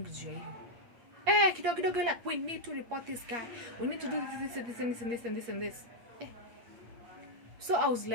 juu ya hiyo. Kidogo like, we need to report this guy. We need to do this. So I was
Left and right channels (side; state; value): left; late; 8.5 ms